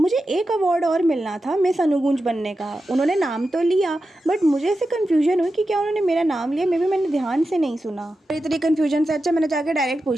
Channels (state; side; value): normal; both; correlation 0.91